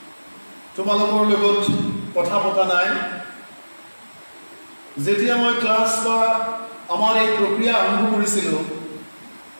তোমালোকৰ লগত কথা পতা নাই যেতিয়া মই ক্লাছ বা আমাৰ এই প্ৰক্ৰিয়া আৰম্ভ কৰিছিলোঁ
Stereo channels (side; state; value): both; inverted; correlation -1.00